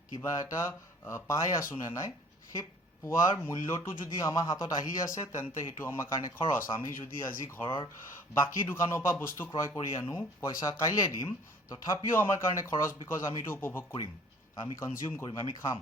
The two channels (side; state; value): both; normal; correlation 0.51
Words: কিবা এটা পাই আছোঁ নে নাই, সেই পোৱাৰ মূল্যটো যদি আমাৰ হাতত আহি আছে, তেন্তে সেইটো আমাৰ কাৰণে খৰচ। আমি যদি আজি ঘৰৰ বাকী দোকানৰ পৰা বস্তু ক্ৰয় কৰি আনো, পইচা কাইলৈ দিম, তথাপিও আমাৰ কাৰণে খৰচ, বিকজ আমি এইটো উপভোগ কৰিম, আমি কনজিউম কৰিম, আমি খাম,